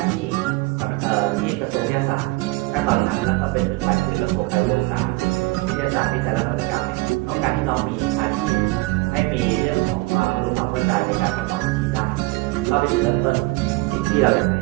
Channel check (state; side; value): quieter; left; 23.2 dB